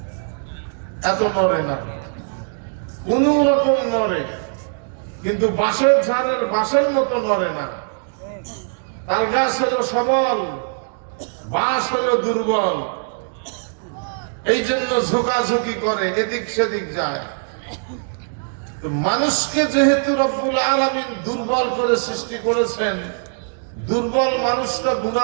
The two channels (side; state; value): left; silent; digital silence